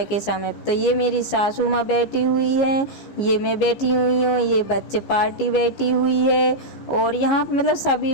के समय। तो ये मेरी सासू माँ बैठी हुई है, ये मैं बैठी हुई हूँ, ये बच्चे पार्टी बैठी हुई है, और यहाँ पे मतलब सभी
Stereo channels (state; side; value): late; right; 15 ms